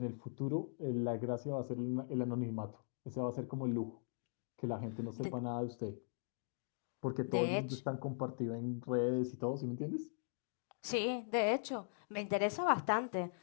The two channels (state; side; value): silent; right; digital silence